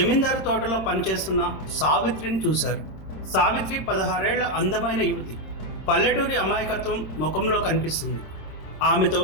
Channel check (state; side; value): late; right; 26 ms